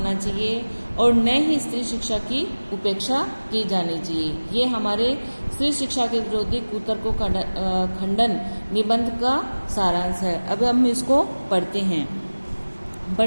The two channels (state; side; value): inverted; both; correlation -1.00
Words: चाहिए और न ही स्त्री शिक्षा की उपेक्षा की जानी चाहिए। ये हमारे स्त्री शिक्षा के विरोधी कुतर्कों का खंडन निबंध का सारांश है। अब हम इसको पढ़ते हैं।